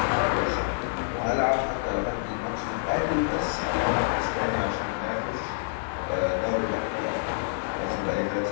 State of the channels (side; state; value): right; silent; digital silence